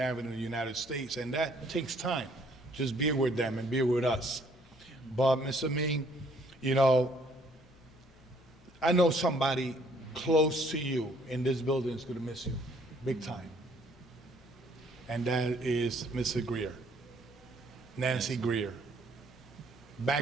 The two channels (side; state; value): both; normal; correlation 0.63